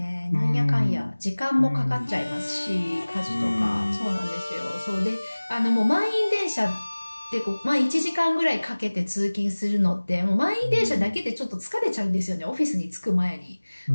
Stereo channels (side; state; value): both; inverted; correlation -1.00